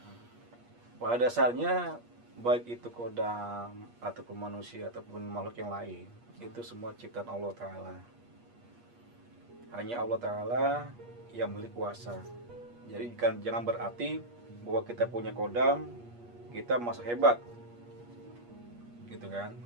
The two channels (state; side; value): late; left; 8.4 ms